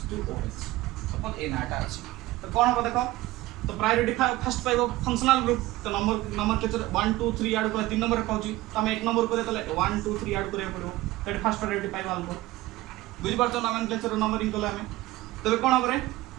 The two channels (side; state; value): left; quieter; 17.8 dB